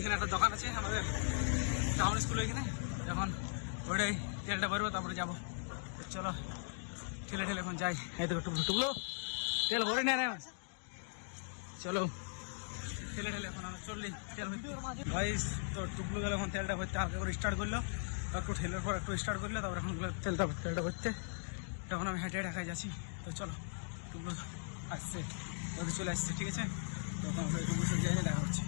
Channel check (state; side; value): silent; right; digital silence